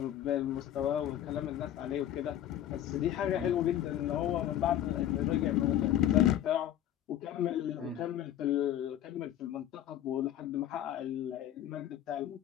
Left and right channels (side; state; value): right; quieter; 11.6 dB